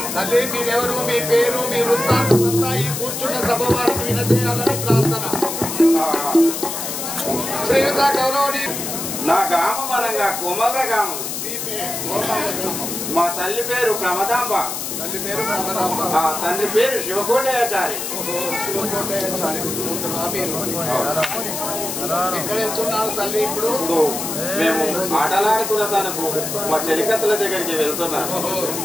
తల్లి మీరెవరు మీ పేరు మీ వృత్తాంతం అంతా ఈ కూర్చున్న సభ వారికి వినజేయాలని ప్రార్థన. శ్రీయుత గౌరవని నా గ్రామం అనగా కోమల గ్రామం. మా తల్లి పేరు ప్రమదాంబ. తల్లి పేరు ప్రమదాంబ. తండ్రి పేరు శివకోటయాచారి. శివకోటయాచారి. ఎక్కడ వెళ్తున్నారు తల్లి? ఇప్పుడు మేము ఆటలాడుతున్న తనకు మా చెలికత్తల దగ్గరికి వెళ్తున్నాను.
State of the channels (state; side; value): noise; left; hiss, 5 dB below the sound